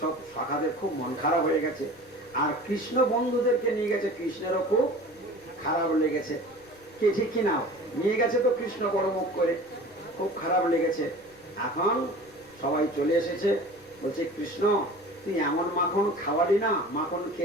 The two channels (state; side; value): noise; left; rumble, 29 dB below the sound